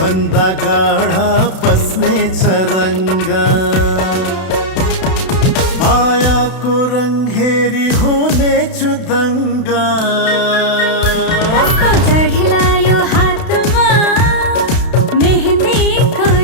भन्दा गाढा बस्नेछ रङ्ग मायाको रङ हेरी हुनेछु दङ्गा कस्तो चढिलायो हातमा मेहन्दीको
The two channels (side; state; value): right; late; 32 ms